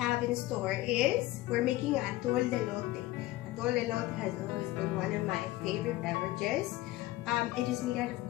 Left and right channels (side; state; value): right; quieter; 17.3 dB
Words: in store is we're making Atol de Elote. Atol de Elote has always been one of my favorite beverages. It is made out